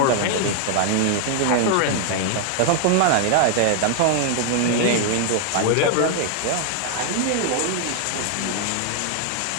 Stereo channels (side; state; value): both; different; correlation 0.00